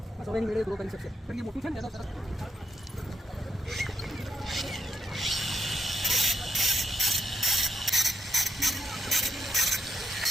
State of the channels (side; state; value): both; normal; correlation 0.79